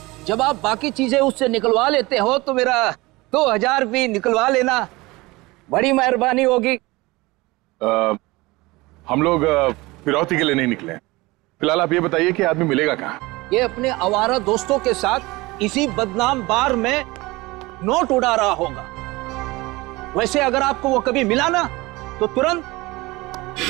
जब आप बाकी चीजें उससे निकलवा लेते हो तो मेरा 2000 भी निकलवा लेना, बड़ी मेहरबानी होगी। हम लोग फिरौती के लिए नहीं निकले। फिलहाल आप ये बताइए कि आदमी मिलेगा कहाँ? ये अपने आवारा दोस्तों के साथ इसी बदनाम बार में नोट उड़ा रहा होगा। वैसे अगर आपको वो कभी मिला ना तो तुरंत,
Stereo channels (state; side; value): quieter; left; 21.8 dB